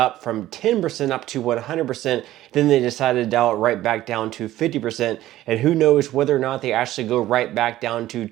from 10% up to 100%. Then they decided to dial it right back down to 50%. And who knows whether or not they actually go right back down to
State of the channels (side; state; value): left; quieter; 14.6 dB